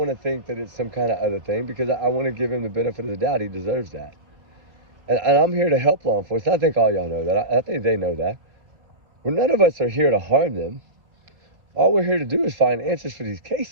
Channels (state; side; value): late; left; 3.6 ms